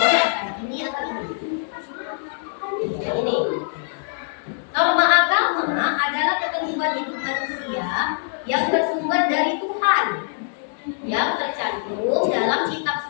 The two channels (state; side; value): silent; right; digital silence